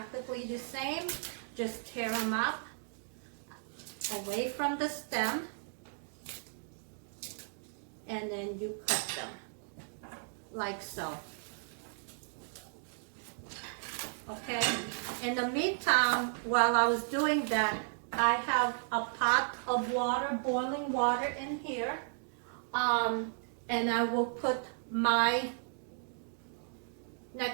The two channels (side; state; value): left; silent; digital silence